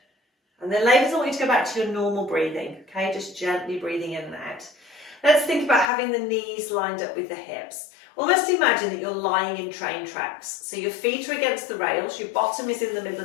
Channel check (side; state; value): right; drops out; at 5.9 s